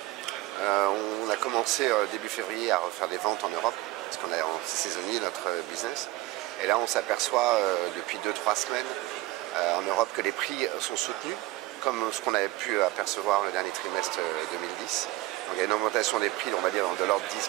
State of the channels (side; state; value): left; quieter; 18.3 dB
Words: On a commencé début février à refaire des ventes en Europe, parce qu'on c'est saisonnier notre business. Et là on s'aperçoit depuis 2-3 semaines en Europe que les prix sont soutenus, comme ce qu'on avait pu apercevoir le dernier trimestre 2010. Donc il y a une augmentation des prix, on va dire, de l'ordre